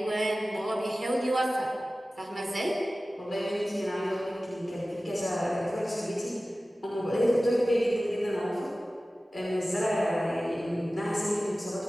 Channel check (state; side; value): normal; both; correlation 0.96